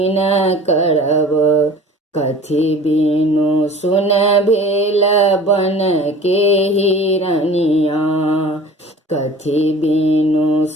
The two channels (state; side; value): normal; both; correlation 0.43